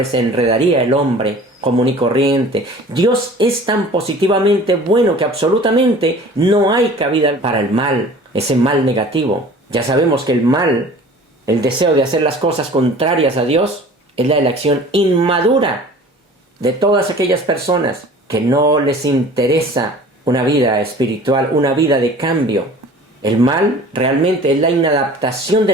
se enredaría el hombre común y corriente. Dios es tan positivamente bueno que absolutamente no hay cabida para el mal, ese mal negativo. Ya sabemos que el mal, el deseo de hacer las cosas contrarias a Dios, es la elección inmadura de todas aquellas personas que no les interesa una vida espiritual, una vida de cambio. El mal realmente es la inadaptación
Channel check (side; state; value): both; normal; correlation 0.45